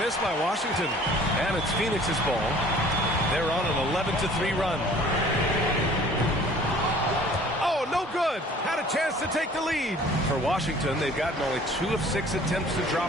by Washington. And it's Phoenix's ball. They're on an 11-3 run. No good. Had a chance to take the lead. For Washington, they've gotten only 2 of 6 attempts to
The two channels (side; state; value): both; normal; correlation 0.51